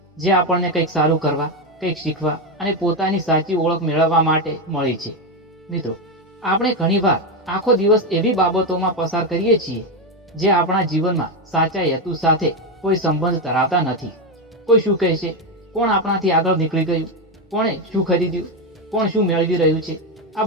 જે આપણને કંઈક સારું કરવા, કંઈક શીખવા અને પોતાની સાચી ઓળખ મેળવવા માટે મળી છે. મિત્રો, આપણે ઘણીવાર આખો દિવસ એવી બાબતોમાં પસાર કરીએ છીએ જે આપણા જીવનમાં સાચા હેતુ સાથે કોઈ સંબંધ ધરાવતા નથી. કોઈ શું કહેશે, કોણ આપણાથી આગળ નીકળી ગયું, કોણે શું ખરીદ્યું, કોણ શું મેળવી રહ્યું છે, આ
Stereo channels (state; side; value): normal; both; correlation 0.10